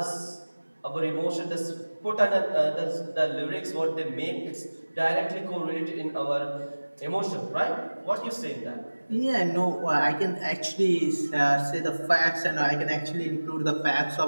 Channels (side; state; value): both; inverted; correlation -1.00